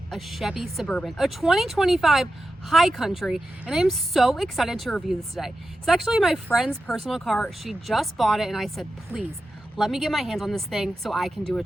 a Chevy Suburban, a 2025 High Country, and I am so excited to review this today. It's actually my friend's personal car. She just bought it and I said, please, let me get my hands on this thing so I can do a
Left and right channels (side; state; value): both; normal; correlation 0.91